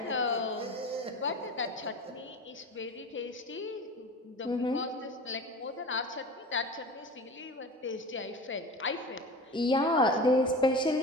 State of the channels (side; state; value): both; normal; correlation 0.34